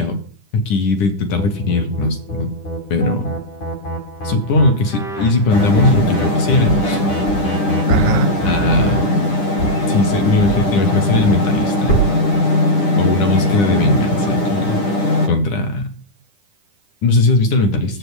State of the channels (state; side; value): late; right; 10 ms